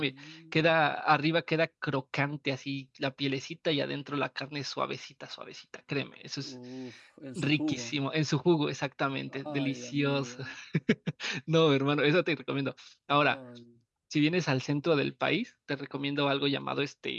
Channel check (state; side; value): identical; both; correlation 1.00